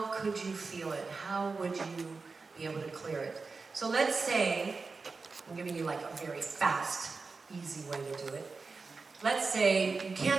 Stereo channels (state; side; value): quieter; left; 4.3 dB